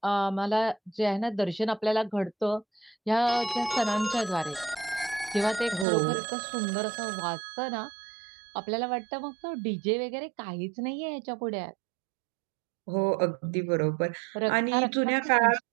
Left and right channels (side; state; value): left; drops out; at 5.9 s